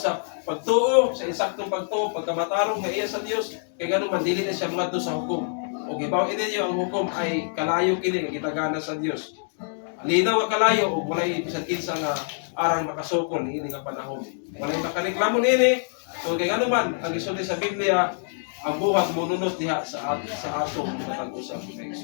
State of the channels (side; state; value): right; silent; digital silence